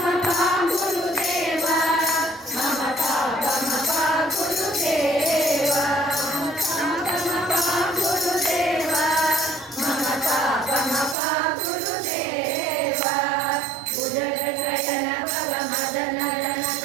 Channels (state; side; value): drops out; left; at 11.2 s